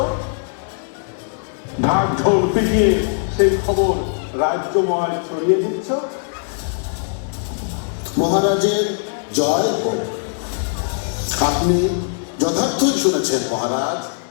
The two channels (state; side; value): silent; right; digital silence